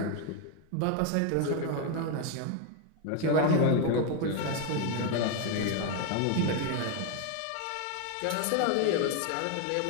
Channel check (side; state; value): both; different; correlation 0.01